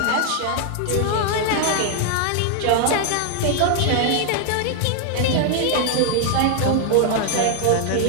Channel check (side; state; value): both; different; correlation 0.00